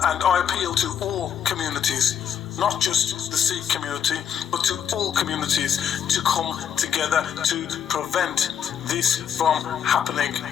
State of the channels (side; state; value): right; quieter; 8.5 dB